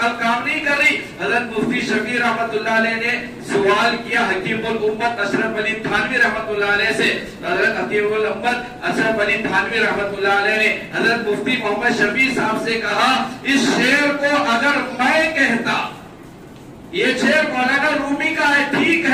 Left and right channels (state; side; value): identical; both; correlation 1.00